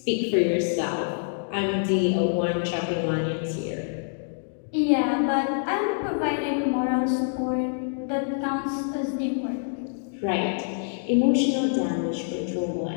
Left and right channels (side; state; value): right; silent; digital silence